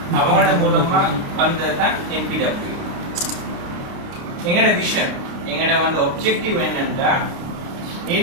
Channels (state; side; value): late; left; 29 ms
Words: அவங்களோட மூலமா வந்ததுதான் NPWA. எங்களோட விஷன், எங்களோட வந்து ஒப்ஜெக்டிவ் என்னன்னா